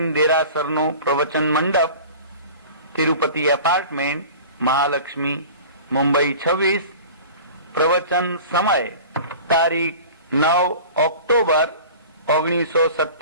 દેરાસરનો પ્રવચન મંડપ, તિરુપતિ એપાર્ટમેન્ટ, મહાલક્ષ્મી, મુંબઈ 26। પ્રવચન સમય તારીખ 9 ઓક્ટોબર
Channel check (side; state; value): both; inverted; correlation -0.40